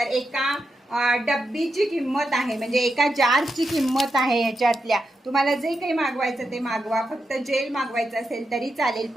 एका डब्बीची किंमत आहे, म्हणजे एका जारची किंमत आहे ह्याच्यातल्या। तुम्हाला जे काही मागवायचं ते मागवा, फक्त जेल मागवायचं असेल तरी चालेल।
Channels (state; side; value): normal; both; correlation 0.87